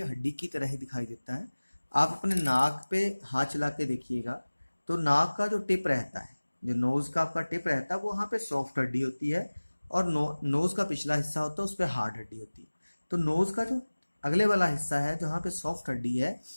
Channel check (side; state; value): both; inverted; correlation -1.00